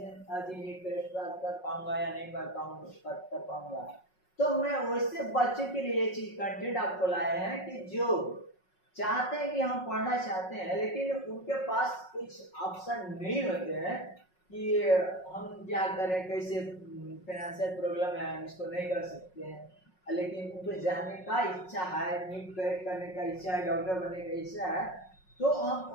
नीट क्रैक कर पाऊंगा या नहीं कर पाऊंगा। तो मैं वैसे बच्चों के लिए ये चीज कंटेंट आपको लाए हैं कि जो चाहते हैं कि हम पढ़ना चाहते हैं लेकिन उनके पास कुछ ऑप्शन नहीं होते हैं कि हम क्या करें, कैसे फाइनेंशियल प्रॉब्लम है, हम इसको नहीं कर सकते हैं, लेकिन उनको जानने का इच्छा है, नीट क्रैक करने का इच्छा है, डॉक्टर बनने का इच्छा है, तो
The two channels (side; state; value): right; late; 5.4 ms